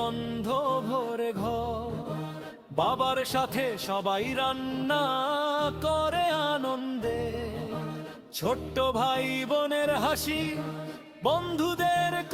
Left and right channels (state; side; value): identical; both; correlation 1.00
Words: ভরে ঘর, বাবার সাথে সবাই রান্না করে আনন্দে। ছোট্ট ভাই বোনের হাসি, বন্ধুদের